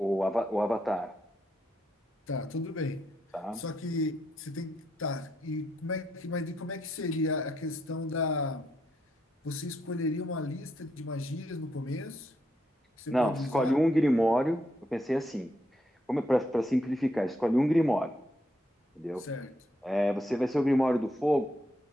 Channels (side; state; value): both; normal; correlation 0.78